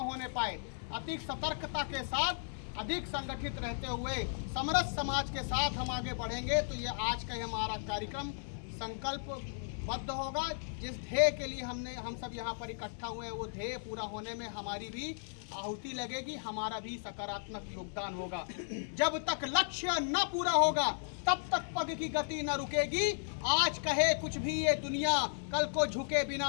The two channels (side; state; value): right; silent; 54 dB below the other